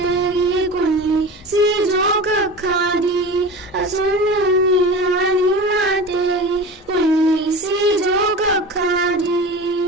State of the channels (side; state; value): both; normal; correlation 0.32